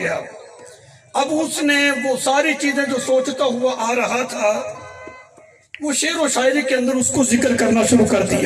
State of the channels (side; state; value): both; identical; correlation 1.00